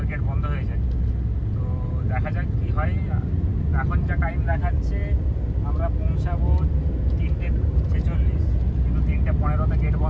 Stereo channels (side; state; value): both; identical; correlation 1.00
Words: গেট বন্ধ হয়ে যায়। তো দেখা যাক কি হয়। এখন যা টাইম দেখাচ্ছে আমরা পৌঁছাবো 3:46, কিন্তু 3:15 গেট